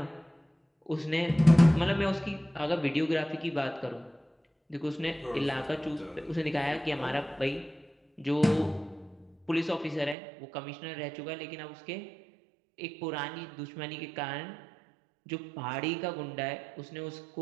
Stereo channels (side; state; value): left; drops out; at 10.2 s